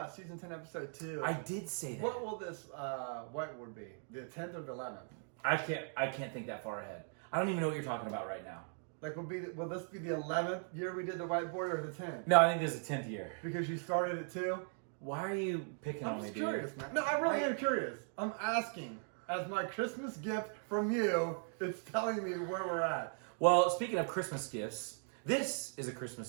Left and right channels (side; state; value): left; silent; 52 dB below the other